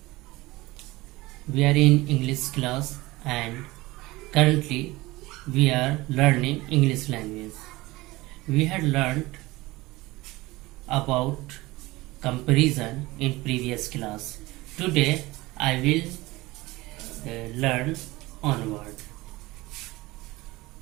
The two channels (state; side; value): quieter; left; 20.3 dB